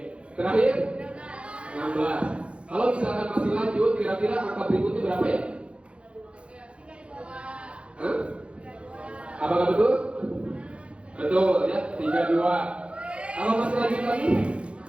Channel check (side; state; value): left; late; 0.059 ms